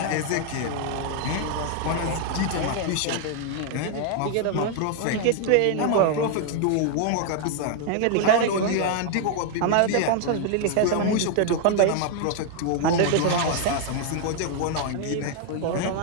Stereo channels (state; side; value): different; both; correlation 0.00